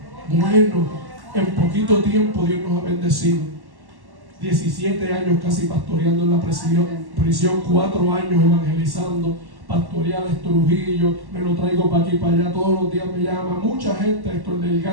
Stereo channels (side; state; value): left; late; 1.1 ms